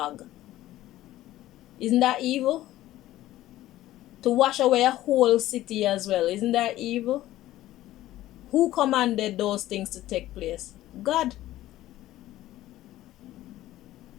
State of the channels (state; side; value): quieter; right; 15.0 dB